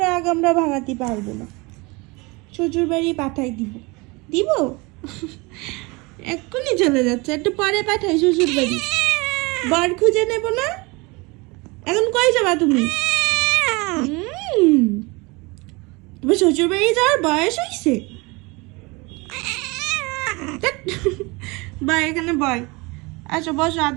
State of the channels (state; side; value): quieter; left; 25.8 dB